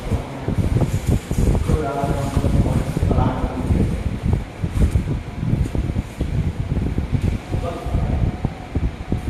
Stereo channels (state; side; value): identical; both; correlation 1.00